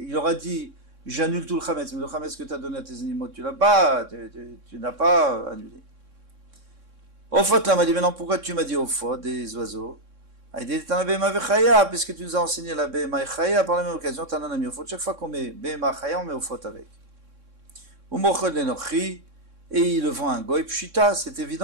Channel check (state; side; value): late; left; 3.6 ms